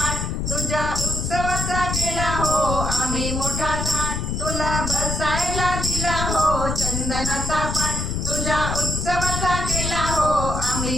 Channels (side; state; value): left; noise; rumble, 2 dB below the sound